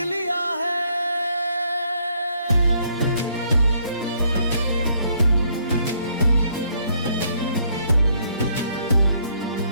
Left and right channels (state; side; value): inverted; both; correlation -0.69